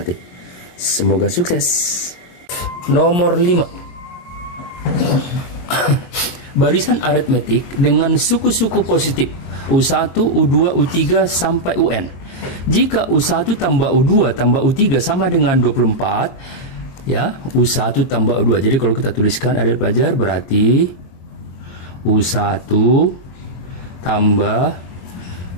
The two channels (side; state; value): right; late; 22 ms